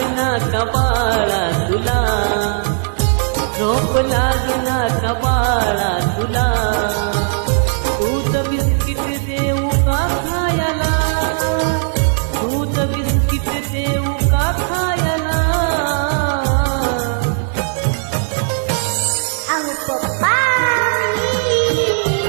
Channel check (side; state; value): left; silent; digital silence